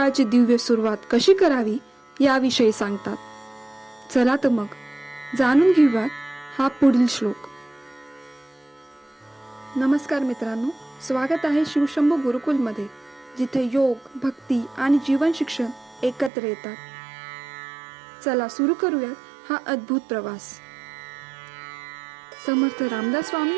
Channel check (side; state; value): left; drops out; at 16.3 s